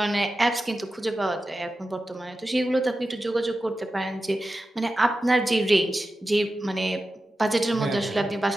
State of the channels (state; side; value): normal; both; correlation 0.92